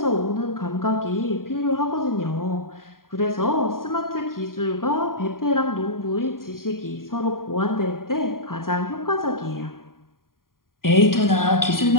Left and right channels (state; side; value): late; right; 0.91 ms